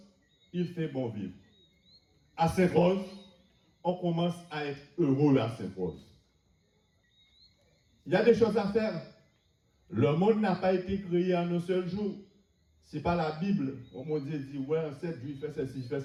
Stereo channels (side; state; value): both; identical; correlation 1.00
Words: il fait bon vivre. À Sainte-Rose, on commence à être heureux à Sainte-Rose. Il y a des choses à faire. Le monde n'a pas été créé en un seul jour. Ce n'est pas la Bible. On m'a dit, ouais, en 7 jours, il fait ceci, il fait